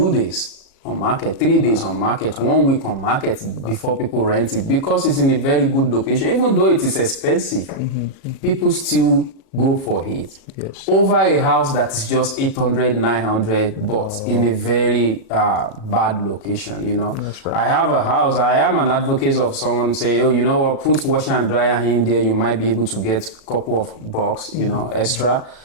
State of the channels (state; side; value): late; right; 37 ms